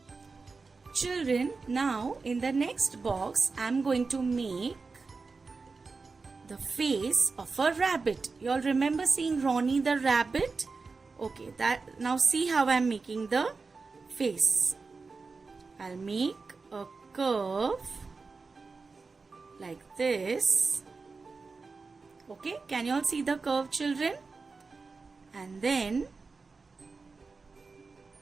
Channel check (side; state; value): left; quieter; 4.3 dB